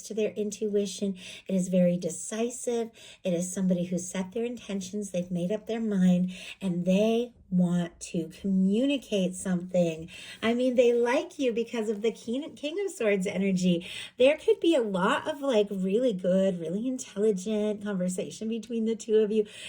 to their intuition. It is very decisive. It is somebody who set their intentions. They've made up their mind and they want to communicate something. I mean, they like you because of the King of Swords energy. There could be a lot of really good, really intelligent conversation between the two of you.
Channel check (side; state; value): both; identical; correlation 1.00